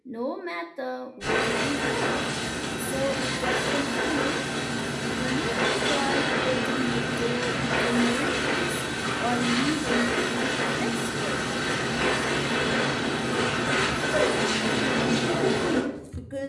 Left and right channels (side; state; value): both; identical; correlation 1.00